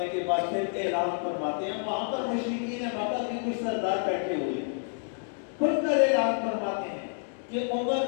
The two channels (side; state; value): right; silent; digital silence